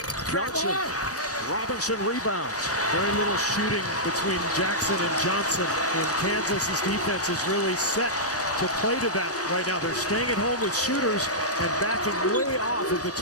Johnson. Robinson rebounds. Very little shooting between Jackson and Johnson. And Kansas's defense is really set to play to that right now. They're staying at home with shooters and backing way off of the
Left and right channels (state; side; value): normal; both; correlation -0.13